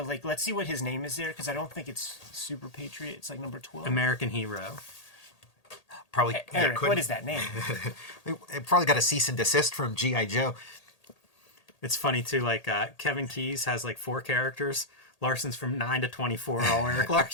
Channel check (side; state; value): right; late; 1.8 ms